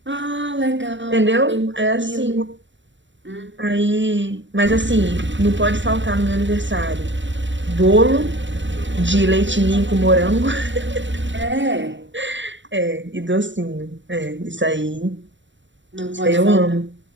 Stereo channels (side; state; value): left; late; 0.54 ms